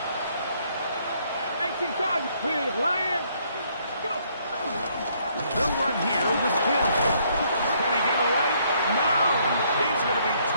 18 card, big lion. Go. They'll run here with Hill. Can he get away? No. He's going to be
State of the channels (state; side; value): inverted; both; correlation -0.68